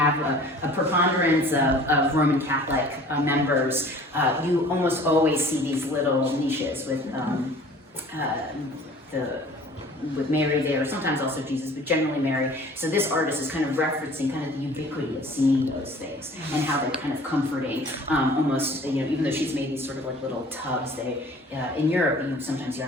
a preponderance of Roman Catholic members. You almost always see these little niches with Mary there, sometimes also Jesus, but generally Mary. So this artist is kind of referencing kind of the ubiquity of seeing those things and how they're kind of comforting. Almost, you know, even though she's made these sort of like little tubs, in Europe, sometimes you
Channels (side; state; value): both; normal; correlation 0.48